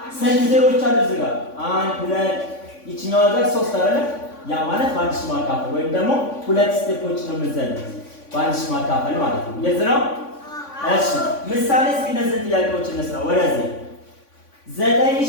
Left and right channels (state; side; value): late; right; 3.5 ms